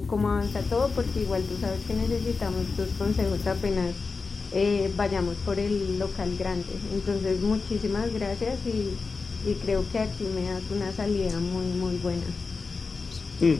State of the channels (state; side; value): quieter; right; 4.4 dB